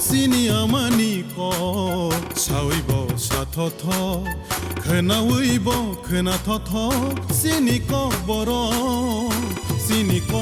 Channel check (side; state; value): both; identical; correlation 1.00